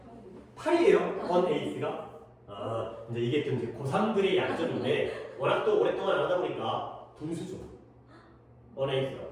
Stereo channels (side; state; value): both; identical; correlation 1.00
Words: 8이요. 8이에요? on 8th가? 이제 이게 좀 이제 고3들의 약점인데 워낙 또 오랫동안 안 하다 보니까 분수죠. on 8th가